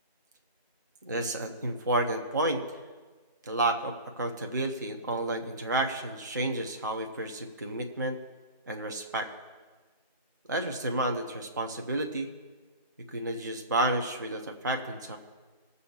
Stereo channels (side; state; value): both; inverted; correlation -0.32